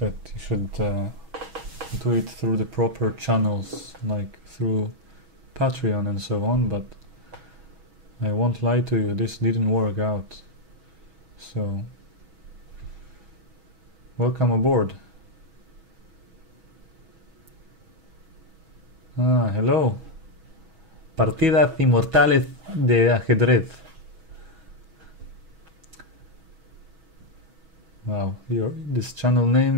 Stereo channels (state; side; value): late; left; 6.2 ms